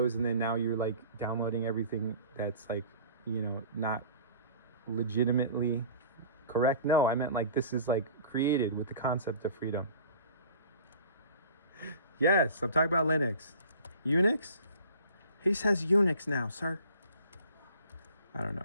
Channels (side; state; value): both; inverted; correlation -0.45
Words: and then now you're like downloading everything that's like, not legitimately correct. No, I meant like this is like created with the concept of freedom. Yes, I'm talking about Linux. Unix? He says Unix now, sir. I don't